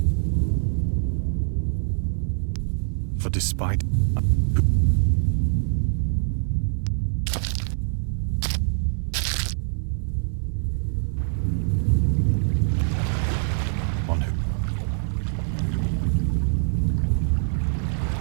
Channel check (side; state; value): left; silent; digital silence